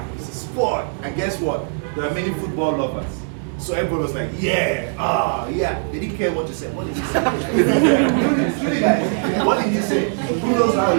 it's a sport. And guess what? There are many football lovers. So everybody was like, yeah, yeah. They didn't care what you said. What did he say? Really, guys, what did he say? Who knows how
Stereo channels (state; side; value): silent; left; 62 dB below the other